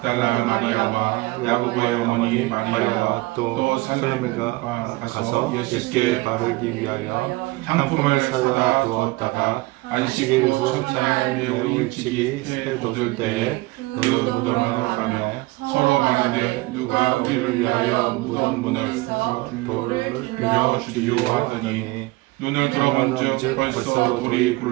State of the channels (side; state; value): left; quieter; 21.6 dB